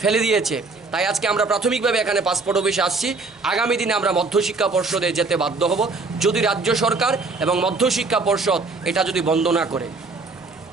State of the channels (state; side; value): quieter; left; 3.8 dB